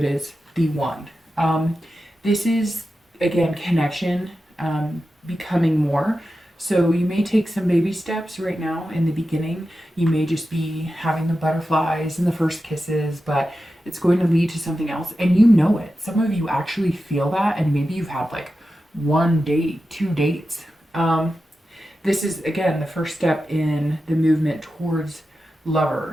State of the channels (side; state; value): both; normal; correlation 0.91